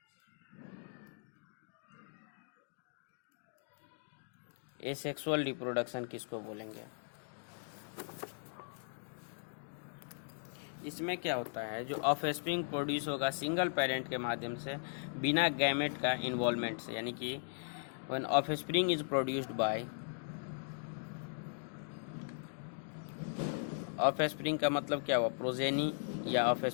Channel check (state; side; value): silent; right; digital silence